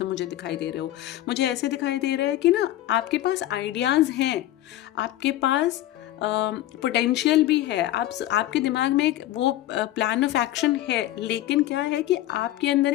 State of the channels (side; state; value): right; quieter; 14.4 dB